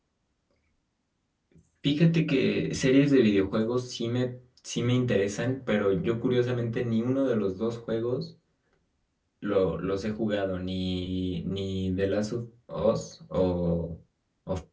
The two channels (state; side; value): identical; both; correlation 1.00